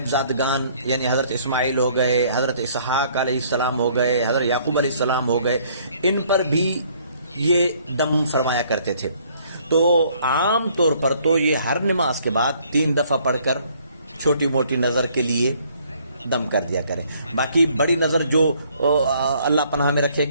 یعنی حضرت اسماعیل ہو گئے، حضرت اسحاق علیہ السلام ہو گئے، حضرت یعقوب علیہ السلام ہو گئے، ان پر بھی یہ دم فرمایا کرتے تھے. تو عام طور پر تو یہ ہر نماز کے بعد 3 دفعہ پڑھ کر چھوٹی موٹی نظر کے لیے دم کر دیا کرے. باقی بڑی نظر جو اللہ پناہ میں رکھے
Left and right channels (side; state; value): both; inverted; correlation -0.62